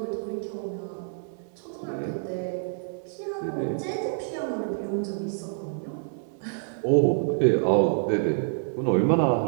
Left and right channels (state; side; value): silent; left; 60 dB below the other